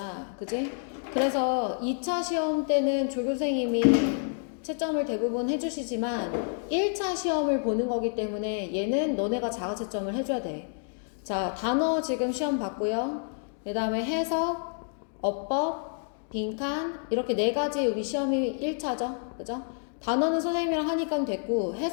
그지? 그래서 2차 시험 때는 조교생님이 채점을 대부분 해주시지만 1차 시험을 보는 거기 때문에 얘는 너네가 자가 채점을 해줘야 돼. 자, 단어 지금 시험 봤고요. 그 다음에 해석, 어법, 빈칸 이렇게 4가지 우리 시험이 1차죠. 그죠? 단어는 선생님이랑 하니까 됐고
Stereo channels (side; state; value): right; silent; 59 dB below the other